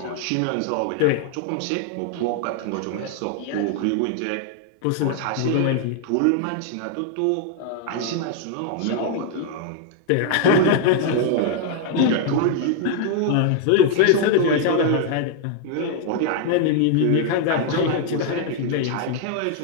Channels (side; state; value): both; different; correlation 0.00